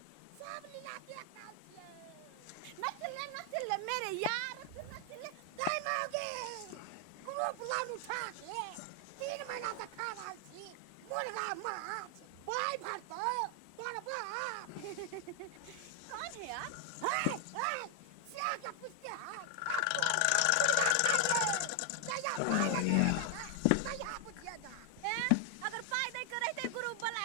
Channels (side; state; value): both; different; correlation 0.00